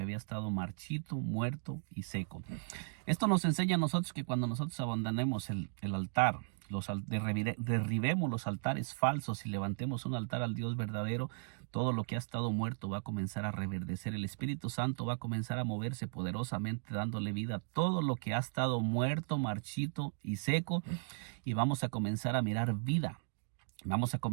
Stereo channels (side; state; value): left; silent; digital silence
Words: había estado marchito, muerto y seco. Esto nos enseña a nosotros que cuando nosotros abandonemos el altar, derribemos los altares falsos y levantemos un altar al Dios verdadero, todo lo que ha estado muerto va a comenzar a reverdecer. El Espíritu Santo va a comenzar a moverse poderosamente, dándole vida a todo lo que ha estado muerto, marchito y seco, y vamos a comenzar a mirar vida. Vamos a